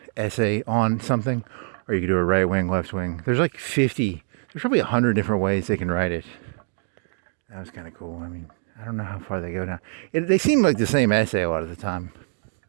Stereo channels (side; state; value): left; silent; digital silence